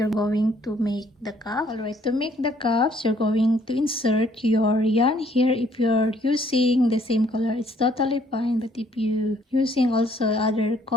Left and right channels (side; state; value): both; normal; correlation 0.63